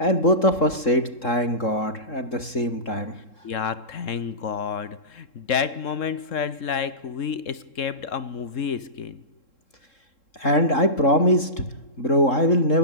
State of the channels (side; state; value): right; late; 3.7 ms